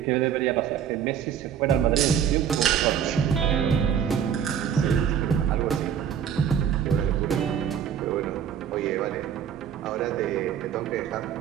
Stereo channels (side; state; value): left; quieter; 8.7 dB